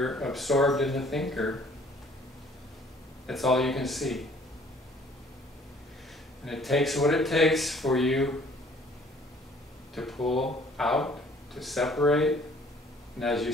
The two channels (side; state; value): both; normal; correlation 0.57